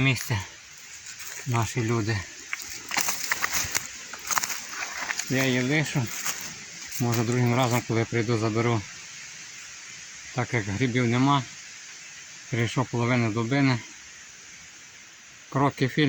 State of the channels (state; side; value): identical; both; correlation 1.00